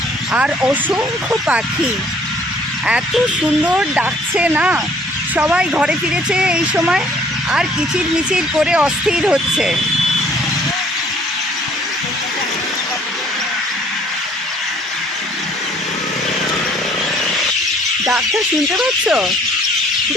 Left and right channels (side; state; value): both; normal; correlation 0.59